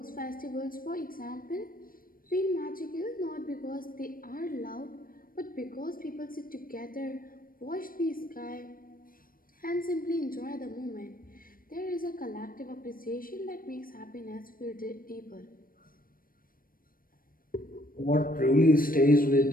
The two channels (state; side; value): late; right; 0.41 ms